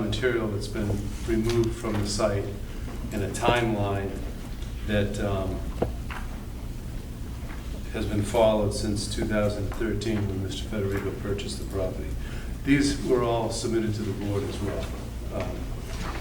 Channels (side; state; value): both; identical; correlation 1.00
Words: material that's been removed from the site and a timeline that has been followed since 2013 when Mr. Federico purchased the property. These were all submitted to the board as well.